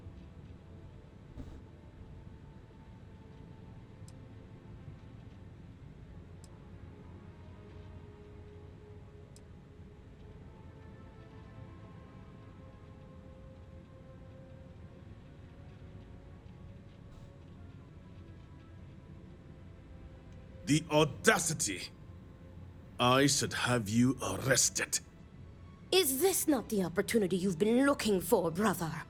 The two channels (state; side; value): identical; both; correlation 1.00